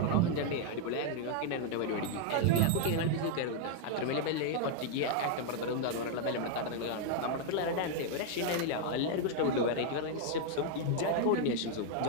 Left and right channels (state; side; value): different; both; correlation 0.00